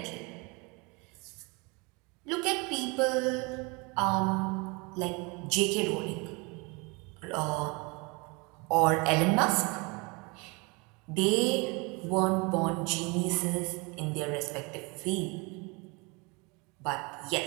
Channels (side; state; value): left; quieter; 28.6 dB